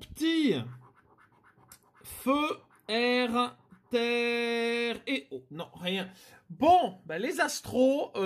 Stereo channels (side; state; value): both; identical; correlation 1.00